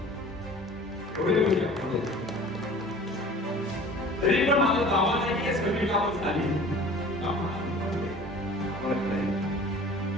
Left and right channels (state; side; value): normal; both; correlation 0.44